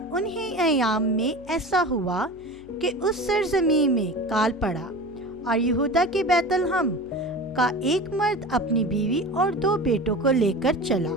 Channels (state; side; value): noise; left; hum, 23 dB below the sound